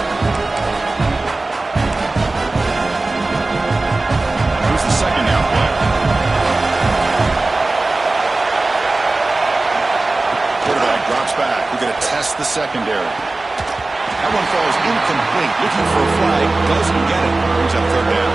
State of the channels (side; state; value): left; quieter; 3.2 dB